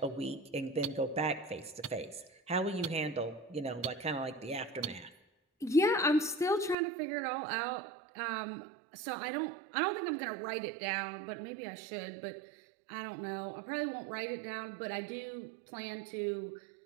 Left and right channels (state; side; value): drops out; left; at 6.8 s